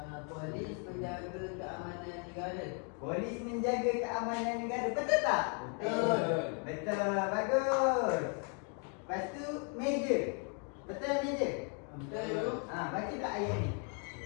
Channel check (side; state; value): right; quieter; 37.7 dB